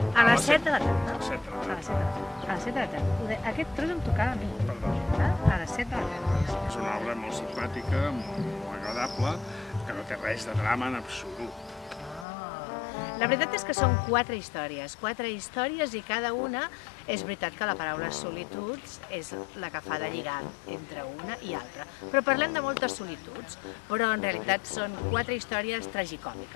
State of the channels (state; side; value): drops out; right; at 12.2 s